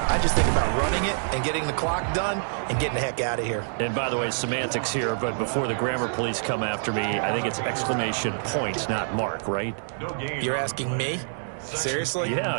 I just think about running it and getting the clock done and getting the heck out of here. And by the way, semantics here, but before the grammar police come after me, I think it's exclamation point, not mark, right? You're asking me? Seriously? Yeah,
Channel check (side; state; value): left; silent; digital silence